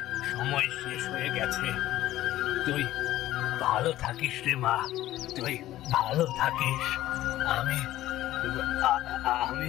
সময় শেষ হয়ে গেছে। তুই ভালো থাকিস রে মা, তুই ভালো থাকিস। আমি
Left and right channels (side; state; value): right; quieter; 14.6 dB